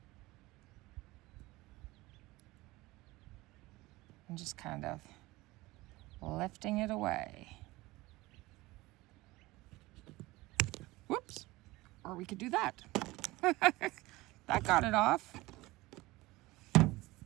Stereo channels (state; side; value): quieter; left; 20.2 dB